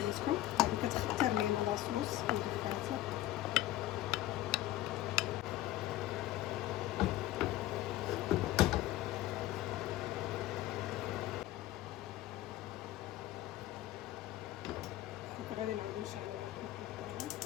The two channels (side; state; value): right; quieter; 14.9 dB